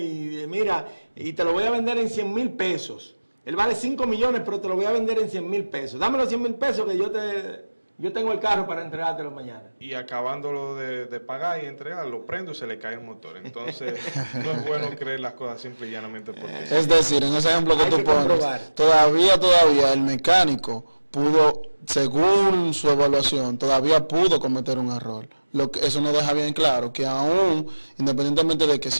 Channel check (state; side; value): inverted; both; correlation -1.00